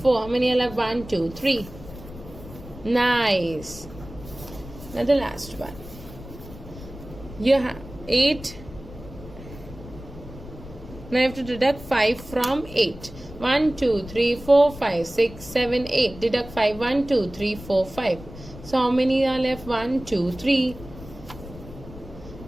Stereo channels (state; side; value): noise; left; rumble, 15 dB below the sound